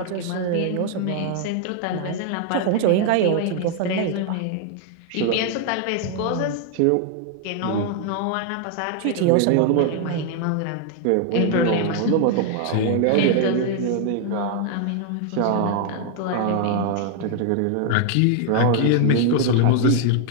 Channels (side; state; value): both; different; correlation 0.00